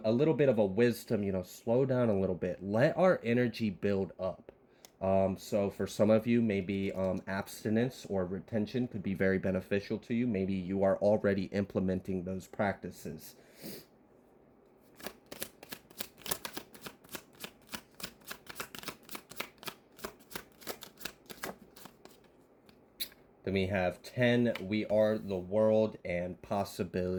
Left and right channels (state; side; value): identical; both; correlation 1.00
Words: little bit of a wisdom, slow down a little bit. Let our energy build up. So for some of you, maybe abstinence or retention could be very beneficial to you. Maybe you are already implementing those practices. Then we have 10, we are the world and